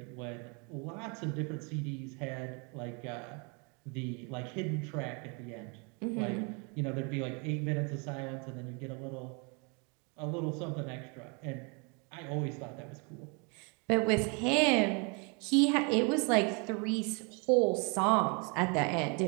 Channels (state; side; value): quieter; left; 33.4 dB